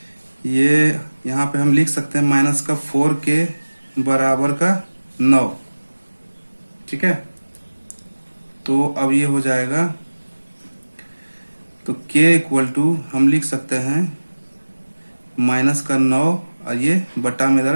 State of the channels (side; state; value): both; inverted; correlation -1.00